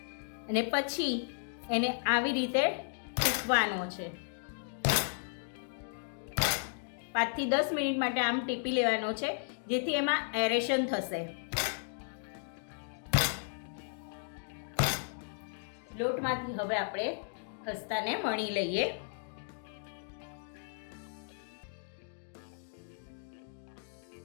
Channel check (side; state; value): right; silent; digital silence